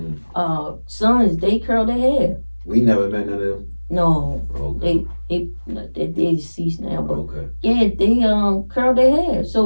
sons, they curled their hair. We never met none of them. No, okay. they deceased now, but okay. Yeah, they curled their hair.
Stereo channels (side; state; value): both; inverted; correlation -1.00